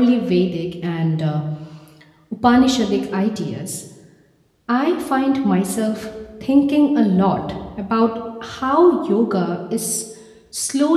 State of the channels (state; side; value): identical; both; correlation 1.00